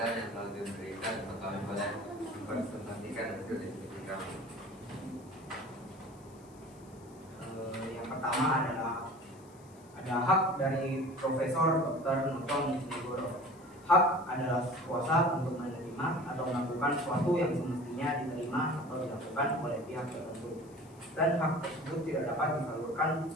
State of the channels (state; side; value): noise; left; hiss, 27 dB below the sound